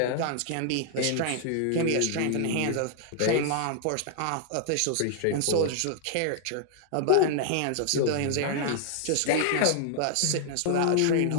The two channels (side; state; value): both; different; correlation 0.00